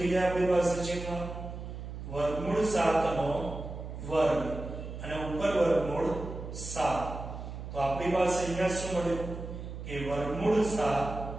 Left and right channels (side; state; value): right; noise; hum, 9 dB below the sound